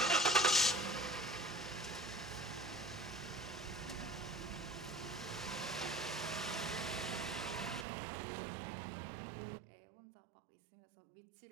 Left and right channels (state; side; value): drops out; left; at 7.9 s